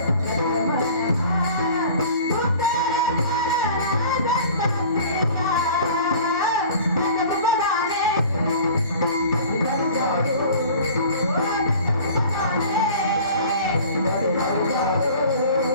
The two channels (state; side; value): inverted; both; correlation -0.45